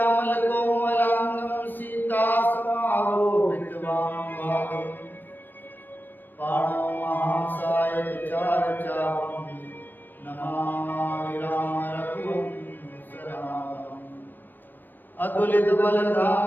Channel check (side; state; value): right; late; 0.092 ms